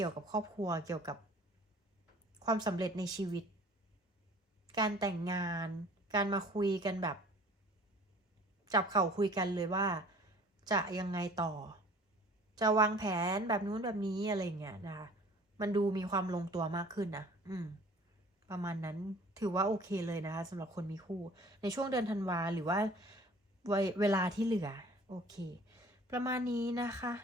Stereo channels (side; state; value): both; normal; correlation 0.49